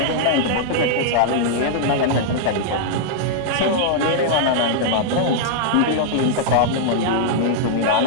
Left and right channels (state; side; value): different; both; correlation -0.02